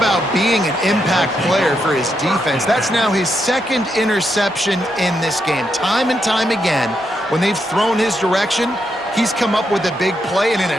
being an impact player for his defense. That's now his 2nd interception in this game. Time and time again, when they've thrown his direction, he's come up with a big play. And in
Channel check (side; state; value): both; normal; correlation 0.81